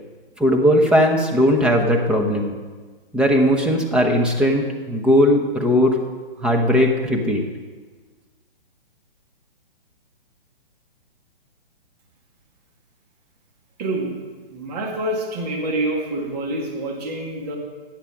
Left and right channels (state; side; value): normal; both; correlation 0.42